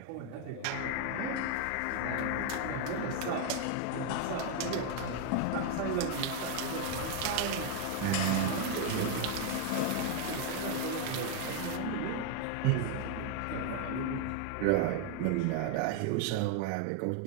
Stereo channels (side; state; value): both; different; correlation 0.00